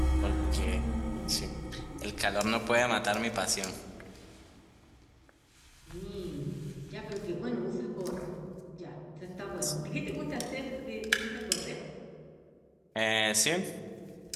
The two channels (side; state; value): both; identical; correlation 1.00